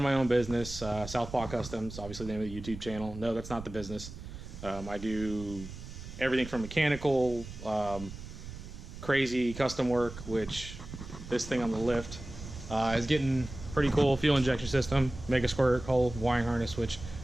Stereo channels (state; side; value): noise; right; rumble, 12 dB below the sound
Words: my own business, Southpaw Customs, obviously the name of the YouTube channel. No, that's not the business. I do everything from mechanical, crazy custom work, which this thing on the lift is getting pretty cool. Fuel injection system, mega squirt hole, wiring harness, which